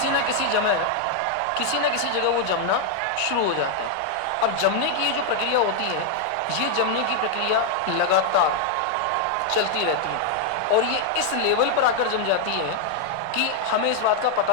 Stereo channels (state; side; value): different; both; correlation 0.00